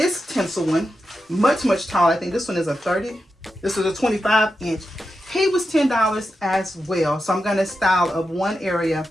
tinsel one, much taller. I think this one is a 30. This was a 25-inch. He was $10 as well. So I'm gonna style up one area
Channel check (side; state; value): both; normal; correlation 0.89